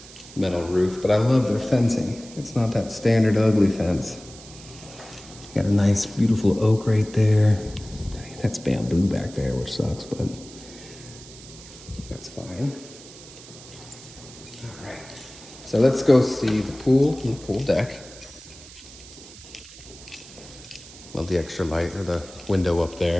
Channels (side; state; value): right; noise; hiss, 18 dB below the sound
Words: metal roof, but I love their fencing. It's not that standard ugly fence. Got a nice, beautiful oak right there. That's bamboo back there, which sucks, but that's fine. All right, so let's go see the pool and the pool deck. Love the extra light or the window up